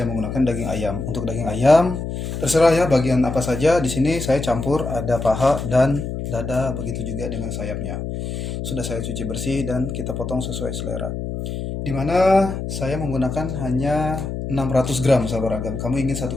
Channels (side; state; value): left; noise; hum, 5 dB below the sound